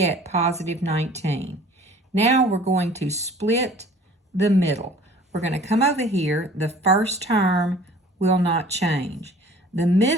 positive 19. Now we're going to split the middle. We're going to come over here. The first term will not change. The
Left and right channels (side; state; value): both; normal; correlation 0.49